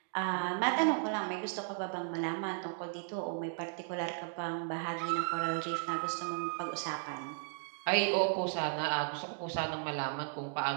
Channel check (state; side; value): silent; left; 54 dB below the other